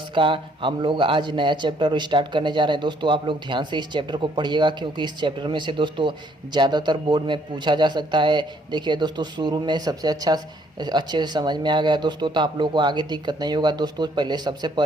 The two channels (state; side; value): normal; both; correlation 0.66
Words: का हम लोग आज नया चैप्टर स्टार्ट करने जा रहे हैं। दोस्तों आप लोग ध्यान से इस चैप्टर को पढ़िएगा, क्योंकि इस चैप्टर में से दोस्तों ज़्यादातर बोर्ड में पूछा जा सकता है। देखिए दोस्तों, शुरू में सबसे अच्छे से समझ में आ गया दोस्तों, तो आप लोगों को आगे दिक्कत नहीं होगा। दोस्तों सबसे